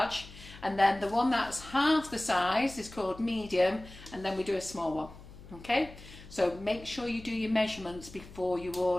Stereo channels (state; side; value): noise; left; hum, 17 dB below the sound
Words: And then the one that's half the size is called medium, and then we do a small one. Okay, so make sure you do your measurements before you